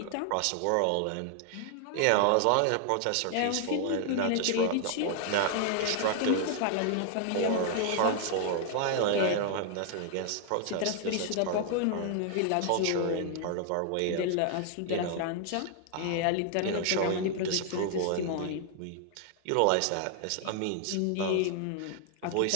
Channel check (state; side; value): different; both; correlation 0.00